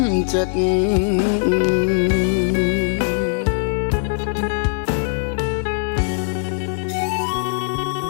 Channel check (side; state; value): right; silent; 57 dB below the other